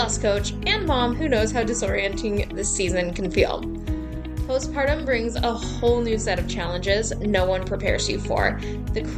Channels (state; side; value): identical; both; correlation 1.00